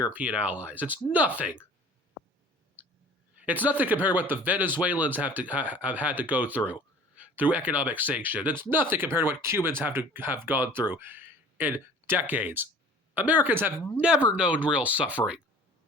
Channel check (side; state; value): both; normal; correlation 0.47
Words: allies. It's nothing. It's nothing compared to what the Venezuelans have had to go through economic sanction. It's nothing compared to what Cubans have gone through in decades. Americans have never known real suffering